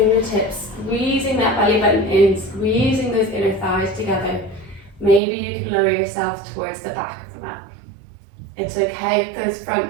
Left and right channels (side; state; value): left; drops out; at 5.2 s